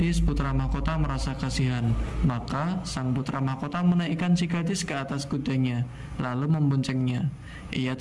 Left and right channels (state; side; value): identical; both; correlation 1.00